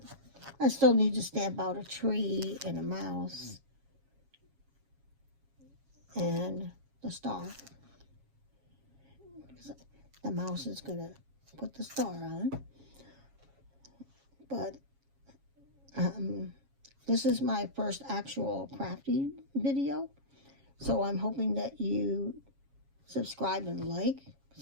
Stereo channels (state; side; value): late; left; 7.3 ms